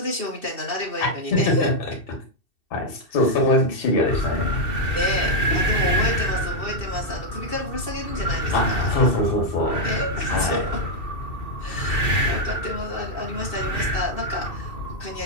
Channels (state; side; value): late; right; 2.7 ms